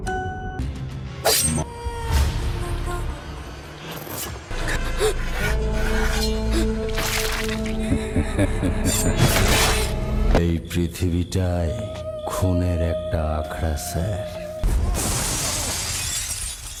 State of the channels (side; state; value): both; identical; correlation 1.00